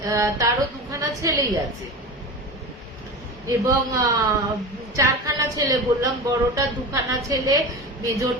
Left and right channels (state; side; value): normal; both; correlation 0.28